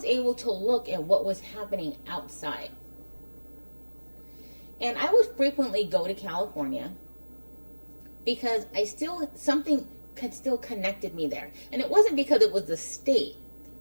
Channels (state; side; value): inverted; both; correlation -1.00